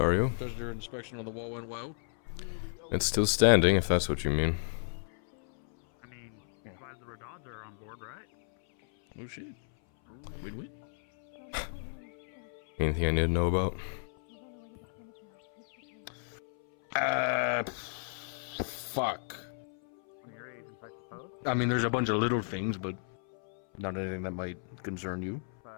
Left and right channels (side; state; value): right; silent; 56 dB below the other